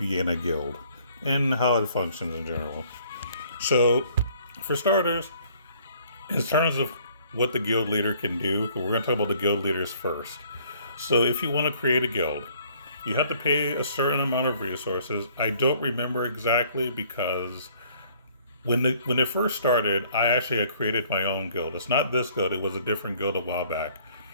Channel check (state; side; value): inverted; both; correlation -0.60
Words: in a guild and how it functions in general. So, for starters, in terms of what the guild leader can do, we're going to talk about the guild leaders first. So, if you want to create a guild, you have to pay a certain amount of resources. I don't remember exactly because when it first started, I actually had created my own guild. It's not this guild; it was a different guild a while back,